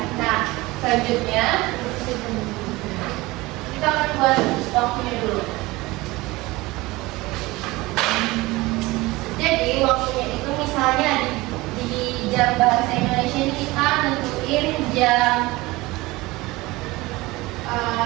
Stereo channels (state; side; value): quieter; left; 20.9 dB